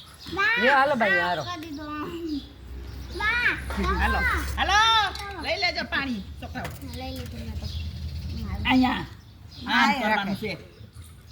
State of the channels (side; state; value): both; identical; correlation 1.00